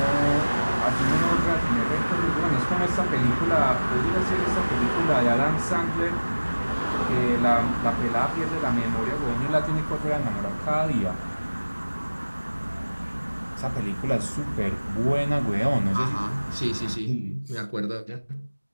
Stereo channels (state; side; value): inverted; both; correlation -1.00